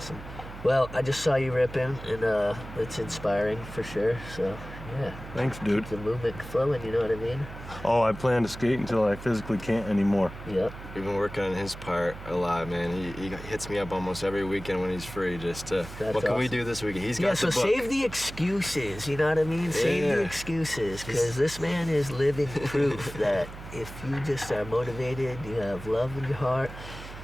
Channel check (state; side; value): noise; right; hum, 13 dB below the sound